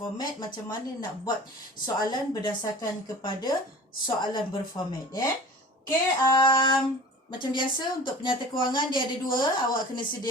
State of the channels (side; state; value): both; normal; correlation 0.41